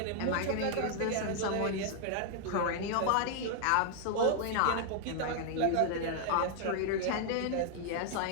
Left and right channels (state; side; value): different; both; correlation 0.00